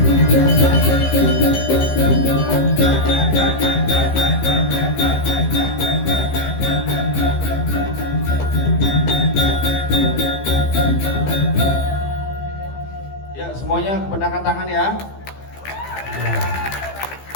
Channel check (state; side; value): late; right; 15 ms